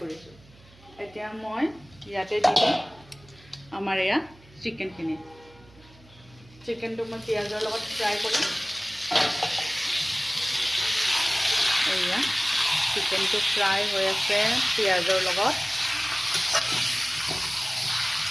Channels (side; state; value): right; noise; hum, 26 dB below the sound